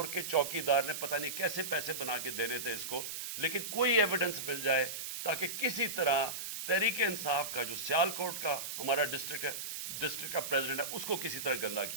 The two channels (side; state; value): right; noise; hiss, 5 dB below the sound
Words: के चौकीदार ने पता नहीं कैसे पैसे बना के देने थे इसको, लेकिन कोई एविडेंस मिल जाए ताकि किसी तरह तहरीक इंसाफ का जो सियालकोट का हमारा डिस्ट्रिक्ट का प्रेसिडेंट है, उसको किसी तरह गंदा